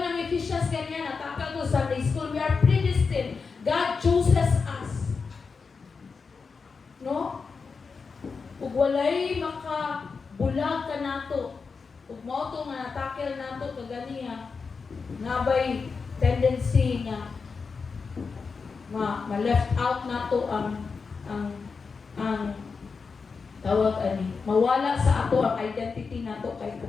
Ephesians ganyan, natakal ko Sunday school, we are predestined. God chooses us. No? Ug walay makabulag ka nato. Ug mao to nga natakel nato kaganiya, nabay tendency nga ma-left out nato ang tawag ani, mawala sa ato ang identity nato kay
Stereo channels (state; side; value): quieter; right; 5.0 dB